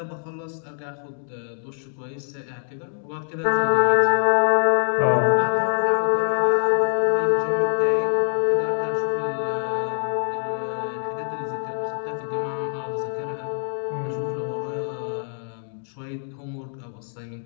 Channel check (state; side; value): silent; right; digital silence